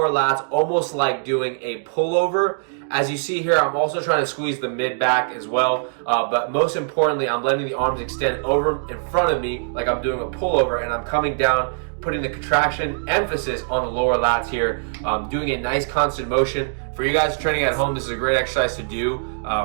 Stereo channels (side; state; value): left; silent; digital silence